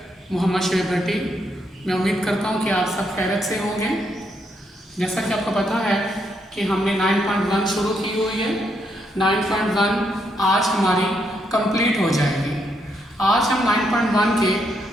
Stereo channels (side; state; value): both; normal; correlation 0.77